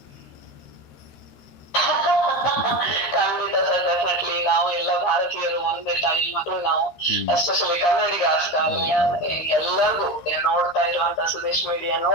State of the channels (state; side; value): late; right; 13 ms